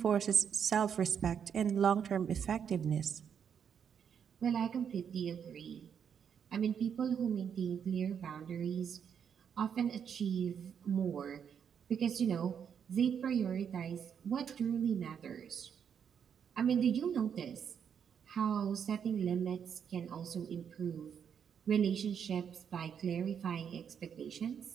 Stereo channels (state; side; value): quieter; left; 7.7 dB